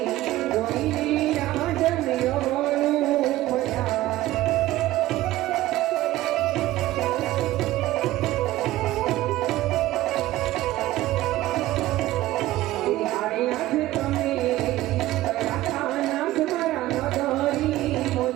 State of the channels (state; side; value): quieter; left; 16.0 dB